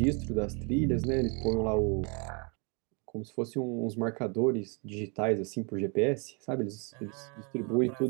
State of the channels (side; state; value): left; quieter; 33.8 dB